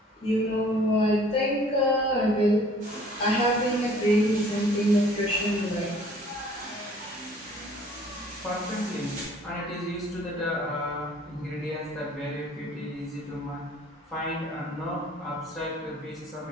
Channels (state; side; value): normal; both; correlation 0.54